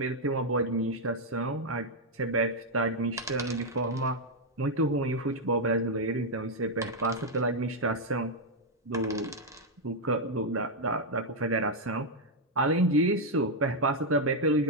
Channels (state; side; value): normal; both; correlation -0.01